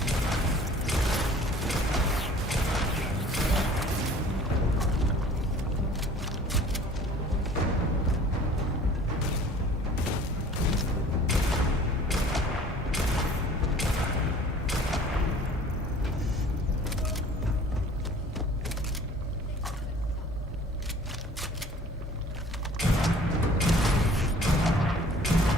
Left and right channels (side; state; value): both; normal; correlation 0.49